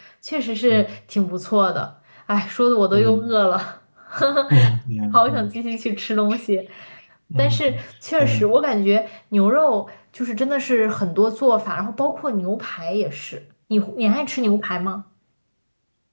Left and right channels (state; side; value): inverted; both; correlation -1.00